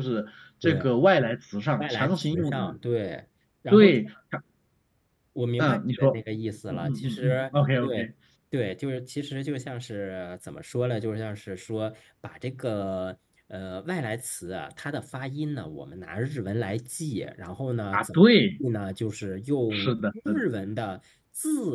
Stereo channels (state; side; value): identical; both; correlation 1.00